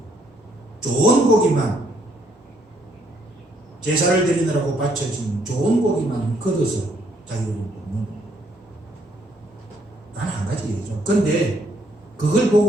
좋은 고기만, 제사를 드리느라고 바쳐진 좋은 고기만 걷어서 자기들이 먹는, 단 한 가지 얘기죠. 그런데 그걸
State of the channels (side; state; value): both; normal; correlation 0.69